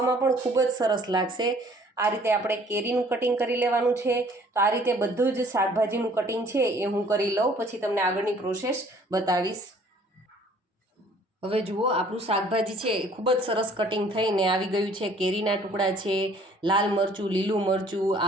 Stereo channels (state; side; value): normal; both; correlation 0.57